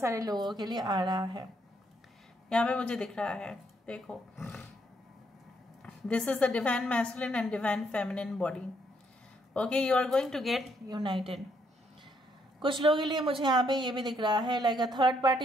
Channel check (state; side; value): normal; both; correlation 0.73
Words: लोगों के लिए आ रहा है. यहाँ पे मुझे दिख रहा है देखो this is the divine masculine and divine feminine body. Okay, you are going to get united. कुछ लोगों के लिए मुझे यहाँ पे ये भी दिख रहा है like a third